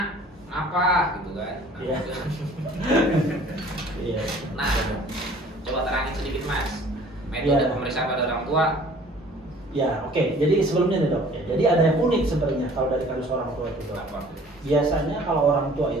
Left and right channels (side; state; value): both; normal; correlation 0.51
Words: apa gitu kan? Nah, Iya. gitu. Iya. Nah, coba terangin sedikit Mas. Metode Iya. pemeriksaan pada orang tua. Ya oke. Jadi sebelumnya nih dok. Ya, jadi ada yang unik sebenarnya kalau dari kasus orang tua itu dok. Apa? Biasanya kalau orang tua